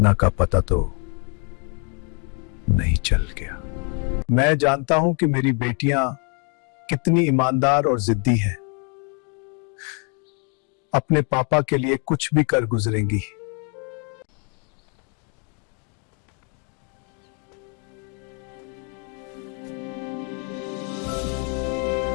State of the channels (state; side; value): quieter; right; 37.8 dB